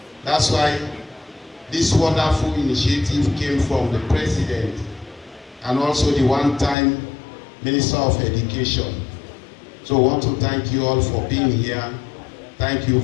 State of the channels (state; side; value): drops out; right; at 6.8 s